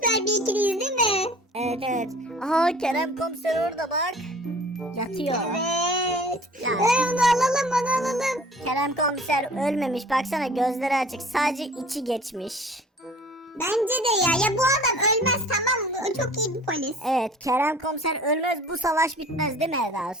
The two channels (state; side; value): normal; both; correlation 0.48